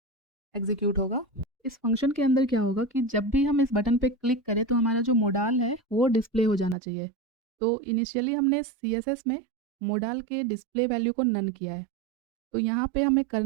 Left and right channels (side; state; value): left; drops out; at 6.8 s